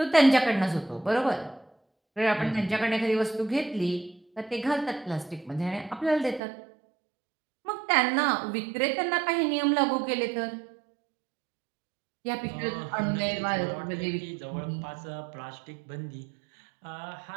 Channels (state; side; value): drops out; left; at 6.4 s